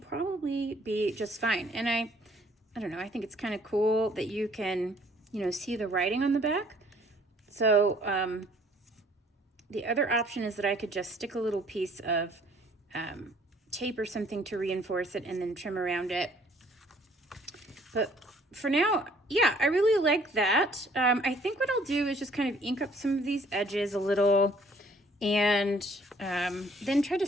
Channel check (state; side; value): normal; both; correlation 0.59